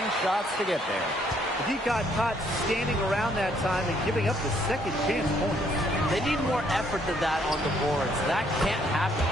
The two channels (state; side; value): normal; both; correlation 0.67